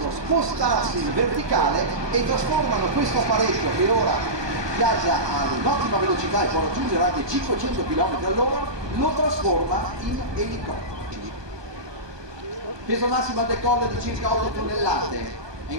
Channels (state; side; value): late; left; 1.2 ms